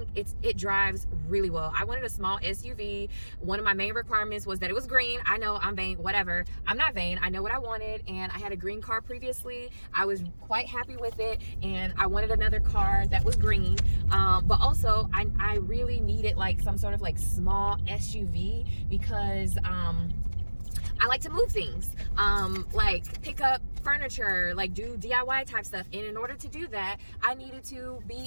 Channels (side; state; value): both; inverted; correlation -1.00